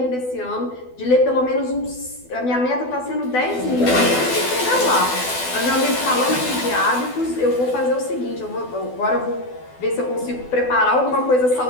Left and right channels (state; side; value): late; right; 12 ms